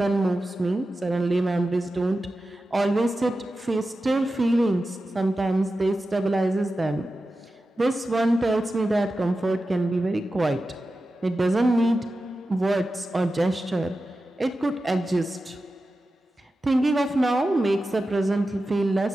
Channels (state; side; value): normal; both; correlation 0.93